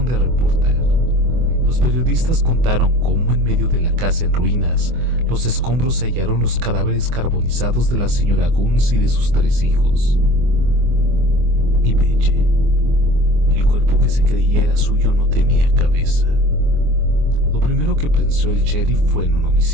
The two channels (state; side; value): late; left; 24 ms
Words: de reportar. Los periodistas contaron cómo en medio de la casa en ruinas, los escombros se hallaron los cadáveres carbonizados de la señora Gunness y de sus 3 hijos. Y Belle, el cuerpo que se creía era suyo, no tenía cabeza. Lo primero que pensó el sheriff fue en un